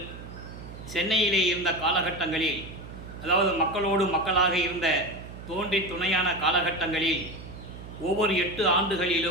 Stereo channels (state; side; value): noise; right; hum, 13 dB below the sound